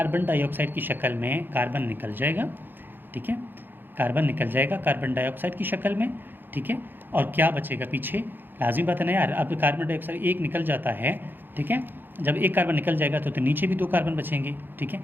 डाइऑक्साइड की शक्ल में कार्बन निकल जाएगा, ठीक है, कार्बन निकल जाएगा कार्बन डाइऑक्साइड की शक्ल में, ठीक है। और क्या बचेगा पीछे, लाजिम बात है ना यार, अब कार्बन डाइऑक्साइड एक निकल जाता है, ठीक है, जब एक कार्बन निकल जाएगा तो नीचे भी 2 कार्बन बचेंगे, ठीक है।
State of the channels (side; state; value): left; late; 0.095 ms